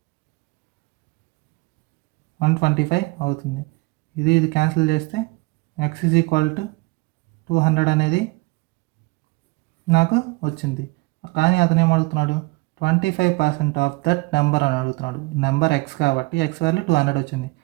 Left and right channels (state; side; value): quieter; left; 23.8 dB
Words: 125 అవుతుంది. ఇది క్యాన్సిల్ చేస్తే x ఈజ్ ఈక్వల్ టు 200 అనేది నాకు వచ్చింది. కానీ అతను ఏమడుగుతున్నాడు, 25% ఆఫ్ దట్ నెంబర్ అని అడుగుతున్నాడు. నెంబర్ ఎక్స్ కాబట్టి ఎక్స్ వాల్యూ 200 వచ్చింది,